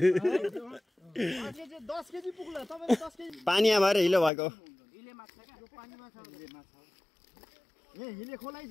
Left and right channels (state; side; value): drops out; right; at 4.3 s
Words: 10 केजी पुग्ला तपाईले 10 केजी पानीमा भएर हिलो भएको हिले माछा क्या यो पानी माछा ए हिले खोलाइ